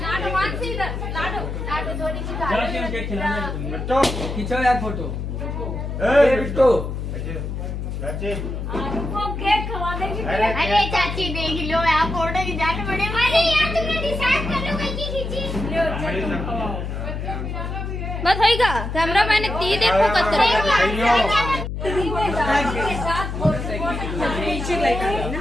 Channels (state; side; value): noise; left; hum, 5 dB below the sound